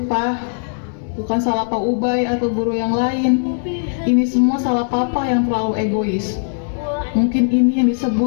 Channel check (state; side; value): silent; right; digital silence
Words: Pak, bukan salah Pak Ubay atau guru yang lain. Ini semua salah Papa yang terlalu egois. Mungkin ini yang